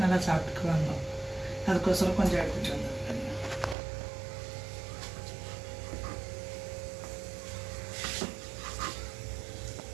நல்லா சாப்பிட்டுக்குவாங்க. அதுக்கோசரம் கொஞ்சம் எடுத்துகிட்டு வந்திருக்கேன்.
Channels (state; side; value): drops out; left; at 3.8 s